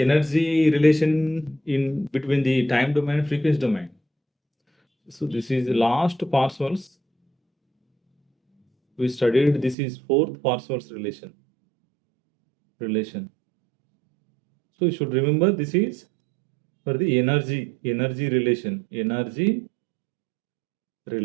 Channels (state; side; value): drops out; left; at 9.8 s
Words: relation in between the time domain and frequency domain. So this is the last partials we studied. This is fourth partials relation. So you should remember this is for the energy relation.